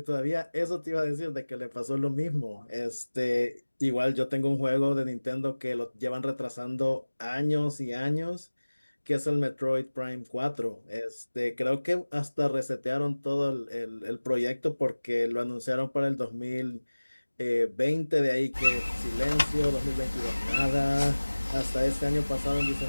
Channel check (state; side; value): inverted; both; correlation -1.00